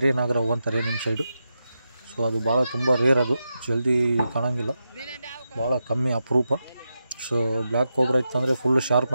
ನಾಗರಾವು ಅಂತಾರೆ ನಿಮ್ಮ ಸೈಡು. ಸೊ ಅದು ಭಾಳ ತುಂಬ ರೇರ್, ಅದು ಜಲ್ದಿ ಕಾಣೋಂಗಿಲ್ಲ, ಭಾಳ ಕಮ್ಮಿ ಅಪರೂಪ. ಸೊ ಬ್ಲ್ಯಾಕ್ ಕೋಬ್ರಾ ಇತ್ತಂದರೆ ಫುಲ್ ಶಾರ್ಪ್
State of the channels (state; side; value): inverted; both; correlation -0.88